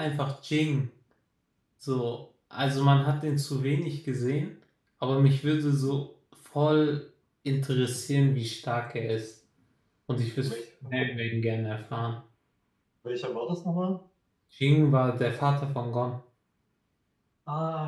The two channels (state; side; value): identical; both; correlation 1.00